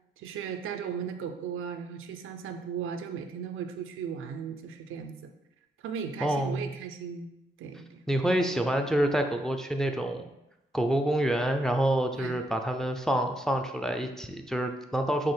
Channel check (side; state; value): both; normal; correlation 0.77